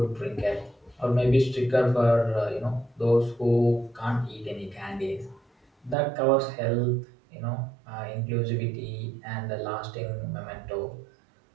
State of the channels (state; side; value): drops out; left; at 6.0 s